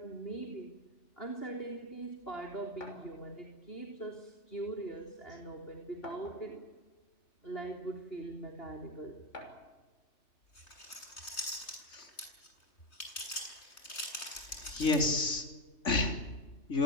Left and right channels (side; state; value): right; late; 3.2 ms